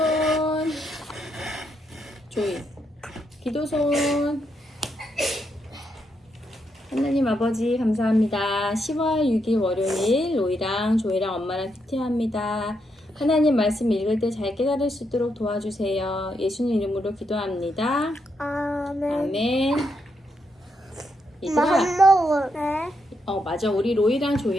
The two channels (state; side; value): normal; both; correlation 0.80